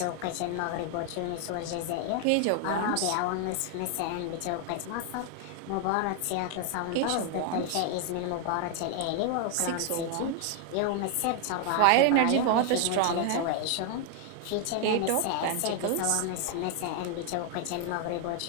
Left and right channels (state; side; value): different; both; correlation 0.00